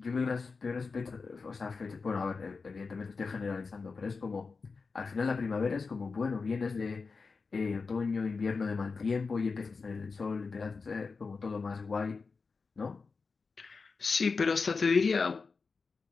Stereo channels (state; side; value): quieter; right; 4.6 dB